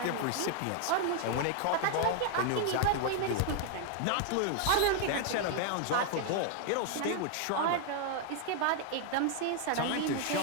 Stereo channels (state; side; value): different; both; correlation 0.00